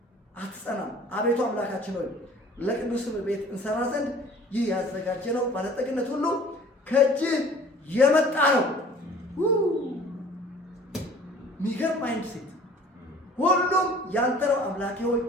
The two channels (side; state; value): both; normal; correlation 0.49